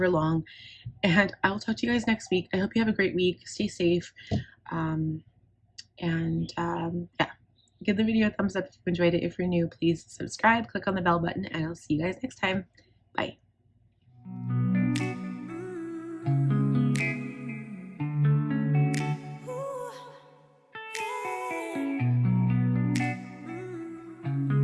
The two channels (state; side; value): identical; both; correlation 1.00